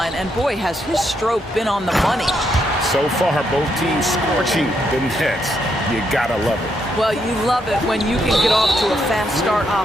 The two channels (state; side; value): normal; both; correlation 0.77